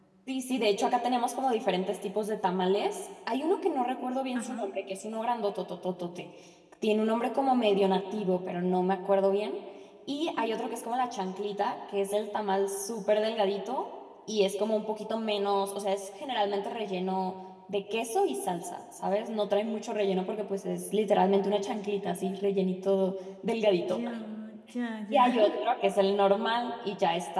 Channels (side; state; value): both; identical; correlation 1.00